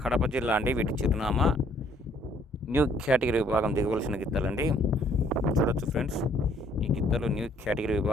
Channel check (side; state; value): both; normal; correlation 0.63